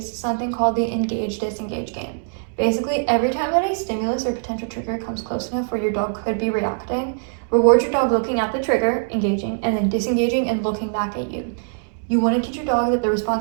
something called the engage-disengage game. Basically, every time that a stimulus or potential trigger comes close enough where your dog could be reacting, reward your dog looking at the trigger, engaging, and then disengaging and looking back at you. You want to teach your dog that the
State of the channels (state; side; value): silent; left; digital silence